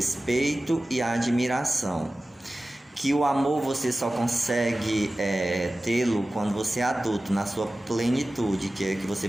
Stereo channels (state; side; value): normal; both; correlation 0.96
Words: e a admiração, que o amor você só consegue tê-lo quando você é adulto, na sua plenitude, que é que você